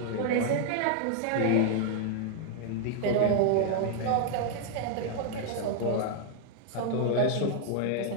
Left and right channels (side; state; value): both; different; correlation 0.00